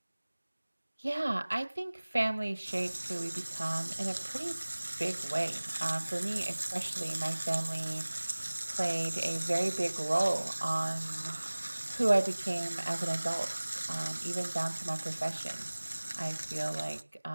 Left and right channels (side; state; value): both; inverted; correlation -1.00